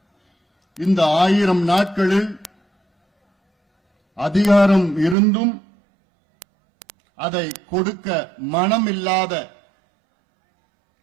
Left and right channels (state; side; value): drops out; left; at 5.2 s